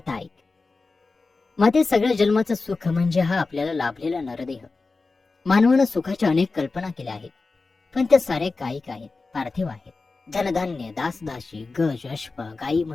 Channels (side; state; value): right; quieter; 3.9 dB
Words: ऐक. माते, सगळ्या जन्माचं सुख म्हणजे हा आपल्याला लाभलेला नरदेह. मानवानं सुखाच्या अनेक कल्पना केल्या आहेत, पण त्या साऱ्या कायिक आहेत, पार्थिव आहेत. धनधान्य, दासदासी, गज, अश्व, गाई